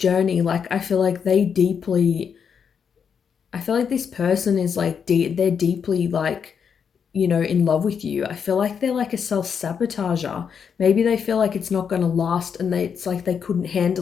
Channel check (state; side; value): quieter; right; 6.9 dB